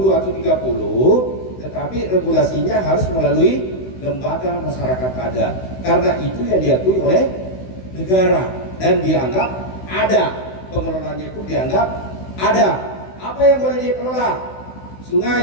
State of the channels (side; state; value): right; late; 16 ms